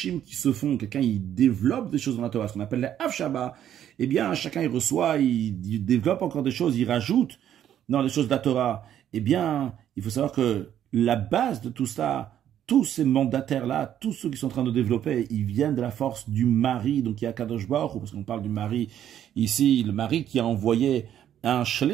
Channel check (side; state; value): left; quieter; 10.6 dB